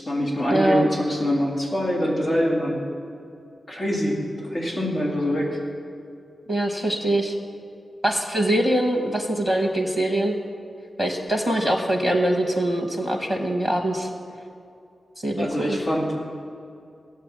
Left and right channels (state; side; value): normal; both; correlation 0.91